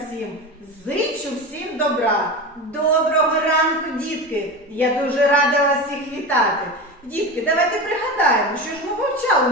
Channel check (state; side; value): normal; both; correlation 0.26